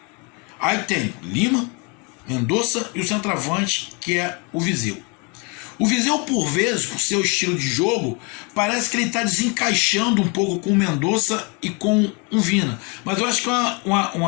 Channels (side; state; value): right; quieter; 32.0 dB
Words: Aí tem Lima, Mendonça e o centroavante, que é o Viseu. O Viseu, por vezes, por seu estilo de jogo, parece que ele está desencaixando um pouco com o Mendonça e com o Vina. Mas eu acho que é